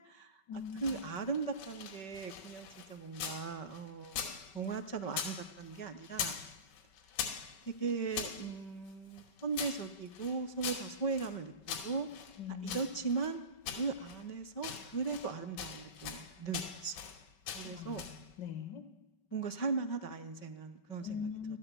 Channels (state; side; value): late; right; 5.3 ms